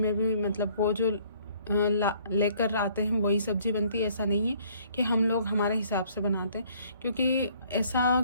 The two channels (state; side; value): inverted; both; correlation -0.60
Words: भी मतलब वो जो लेकर आते हैं वही सब्ज़ी बनती है। ऐसा नहीं है कि हम लोग हमारे हिसाब से बनाते हैं, क्योंकि ऐसा